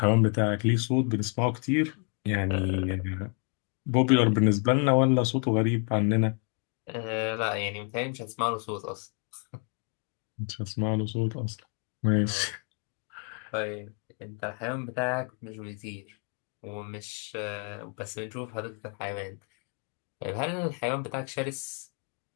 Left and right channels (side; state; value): right; quieter; 35.6 dB